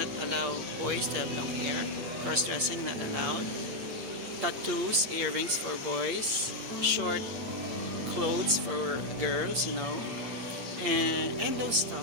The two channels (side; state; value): left; late; 8.5 ms